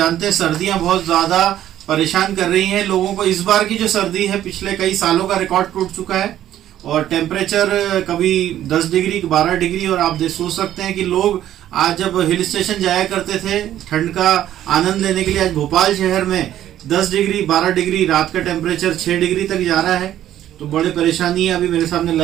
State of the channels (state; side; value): quieter; left; 12.0 dB